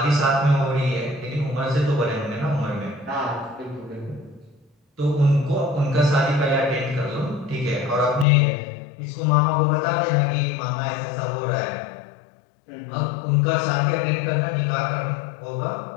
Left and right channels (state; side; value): drops out; right; at 8.2 s